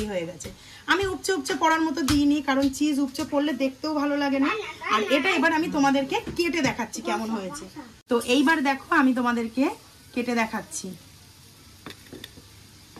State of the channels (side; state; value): both; identical; correlation 1.00